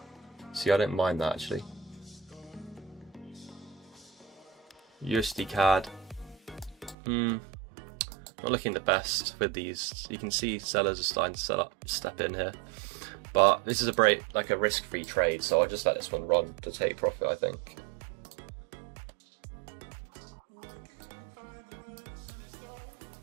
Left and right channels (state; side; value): drops out; left; at 7.0 s